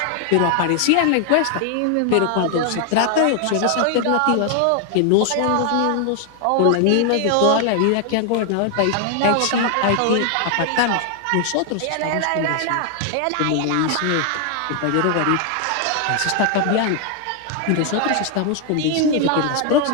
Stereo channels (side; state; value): both; different; correlation 0.00